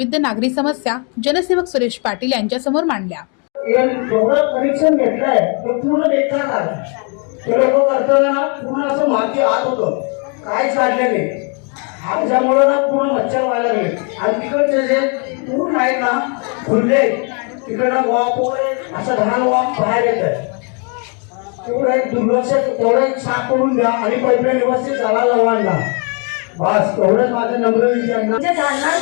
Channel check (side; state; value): right; quieter; 37.3 dB